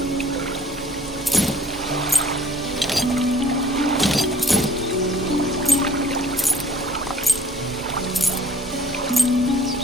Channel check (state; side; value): normal; both; correlation 0.56